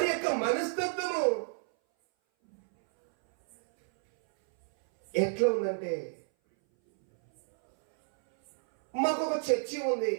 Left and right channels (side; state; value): left; silent; 58 dB below the other